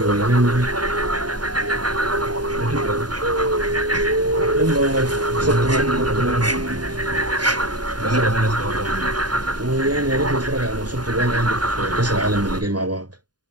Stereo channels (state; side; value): late; left; 0.70 ms